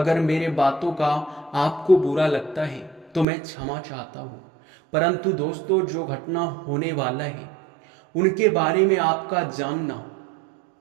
मेरे बातों का आपको बुरा लगता है तो मैं क्षमा चाहता हूँ, परंतु दोस्तों, जो घटना होने वाला है उनके बारे में आपका जानना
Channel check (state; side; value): drops out; left; at 3.2 s